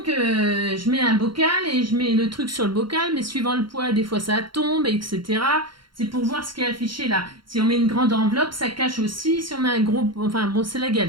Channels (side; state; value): left; late; 0.73 ms